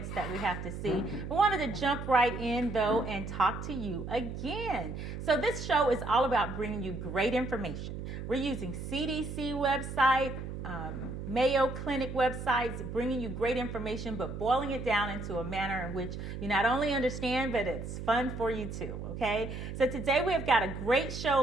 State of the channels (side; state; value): right; noise; hum, 7 dB below the sound